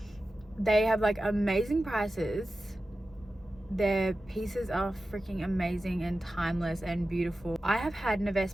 they have like amazing prices. Their pieces are freaking amazing and timeless and beautiful. I have had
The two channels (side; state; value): both; normal; correlation 0.93